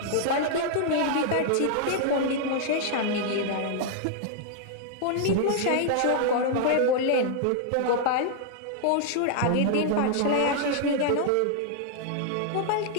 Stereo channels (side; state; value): both; different; correlation -0.01